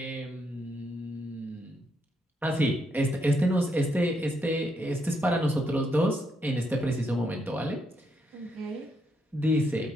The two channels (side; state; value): both; normal; correlation 0.78